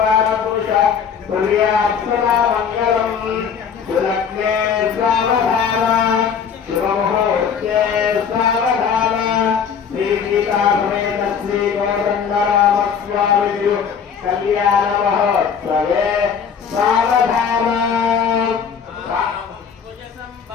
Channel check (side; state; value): right; quieter; 7.0 dB